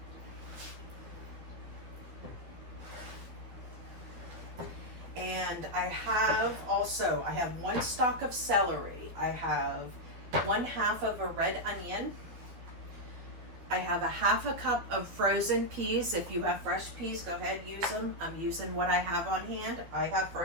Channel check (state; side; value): late; left; 12 ms